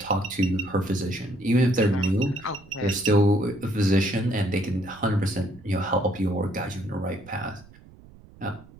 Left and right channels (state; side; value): noise; right; rumble, 23 dB below the sound